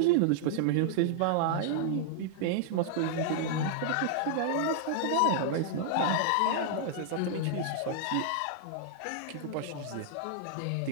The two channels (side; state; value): both; different; correlation -0.01